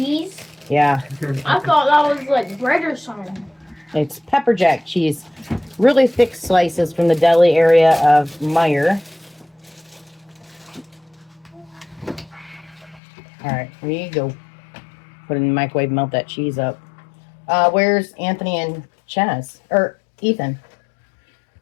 Yeah. I thought that was like bread or something. It's pepper jack cheese. Really thick slices from the deli area of Meyer. Alright, here you go. Put it in the microwave, melt that cheese up. Where's Anthony and Chaz? Or Ethan?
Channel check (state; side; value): drops out; right; at 13.0 s